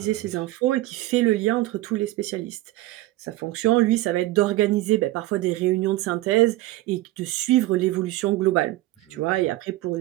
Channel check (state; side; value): quieter; left; 17.1 dB